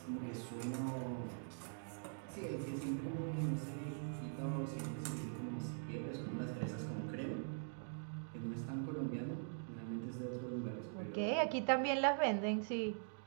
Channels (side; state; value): left; silent; digital silence